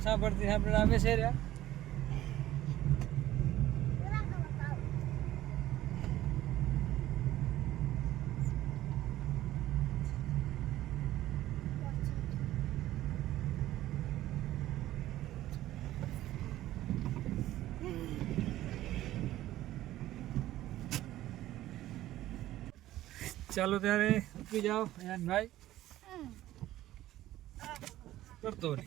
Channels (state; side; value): quieter; left; 14.5 dB